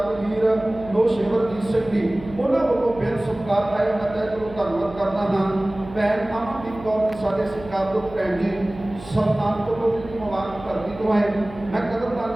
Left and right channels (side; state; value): right; noise; hum, 16 dB below the sound